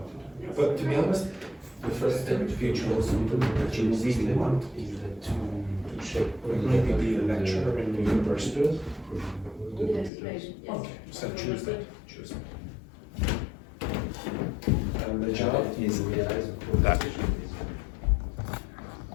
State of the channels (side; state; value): right; drops out; at 10.1 s